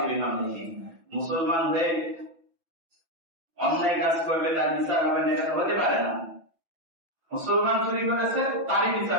বিহামদিহি। মুসলমান হয়ে অন্যায় কাজ করবে, তার বিচার হবে না, এটা হতে পারে না। মুসলমান চুরি করেছে, তারই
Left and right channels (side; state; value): left; late; 5.9 ms